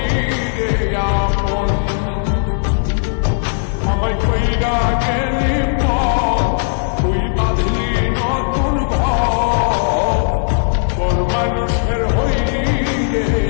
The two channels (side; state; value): right; silent; digital silence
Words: রে আপন। আমায় কইরা গেলি তুই বাঁধলি নতুন ঘর, মানুষের হইলি রে